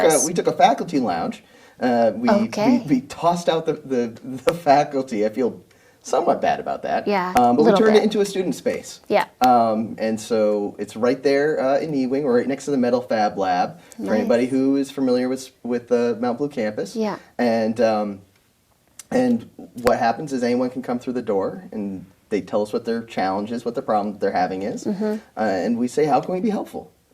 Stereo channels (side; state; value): both; identical; correlation 1.00